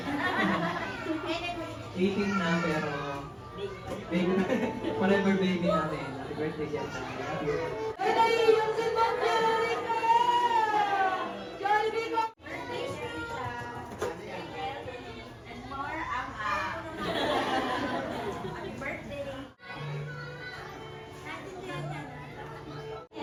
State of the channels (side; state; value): both; identical; correlation 1.00